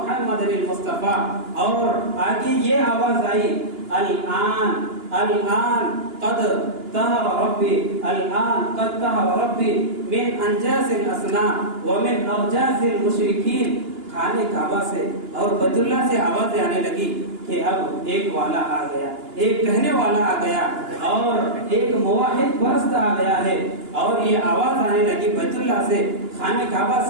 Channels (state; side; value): late; left; 2.9 ms